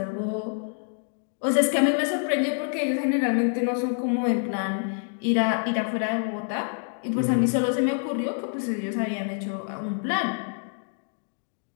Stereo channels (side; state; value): right; silent; 58 dB below the other